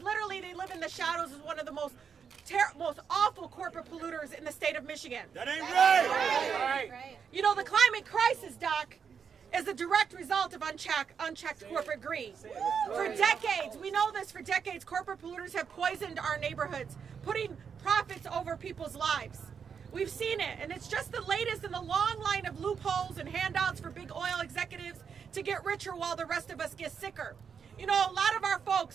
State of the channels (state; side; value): quieter; left; 6.7 dB